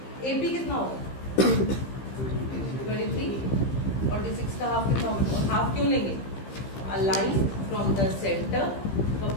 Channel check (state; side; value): late; right; 15 ms